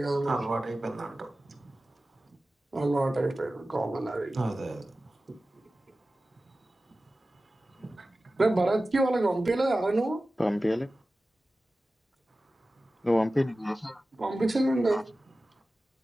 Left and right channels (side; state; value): both; normal; correlation 0.95